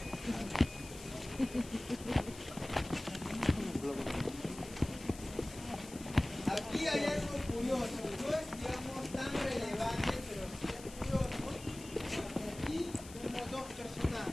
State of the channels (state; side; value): noise; left; hiss, 16 dB below the sound